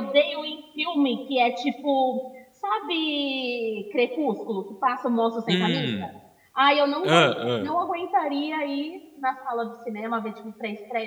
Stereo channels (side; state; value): both; identical; correlation 1.00